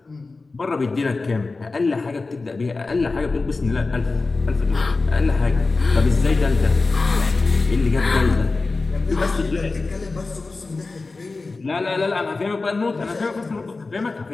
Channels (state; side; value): quieter; right; 3.7 dB